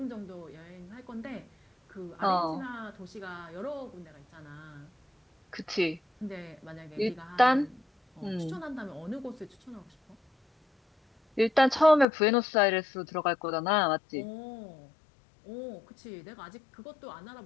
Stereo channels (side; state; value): right; drops out; at 12.1 s